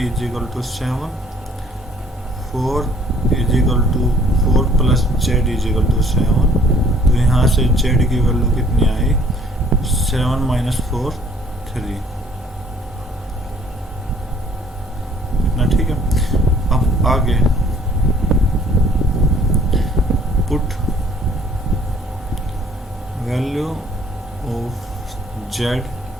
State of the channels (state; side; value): normal; both; correlation 0.58